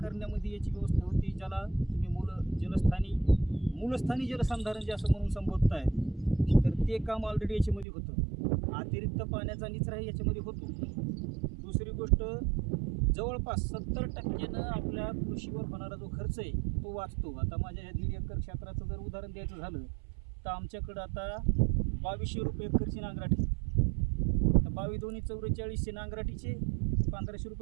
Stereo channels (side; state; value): left; drops out; at 7.9 s